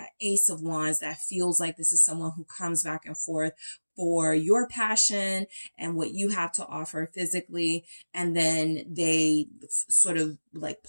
Ace of Wands, that feels like this is someone who comes back and forth for your passion and what you have to offer physically. And then they sort of like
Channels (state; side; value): inverted; both; correlation -1.00